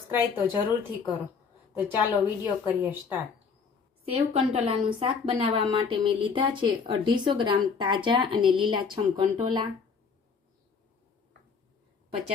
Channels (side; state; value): right; quieter; 5.6 dB